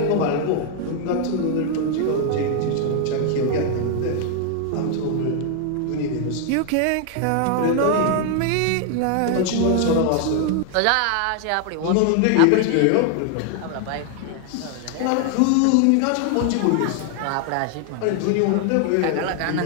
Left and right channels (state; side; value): different; both; correlation 0.00